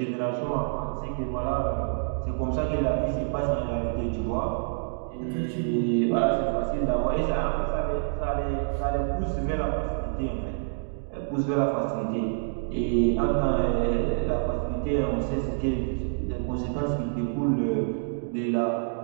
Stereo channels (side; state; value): left; silent; digital silence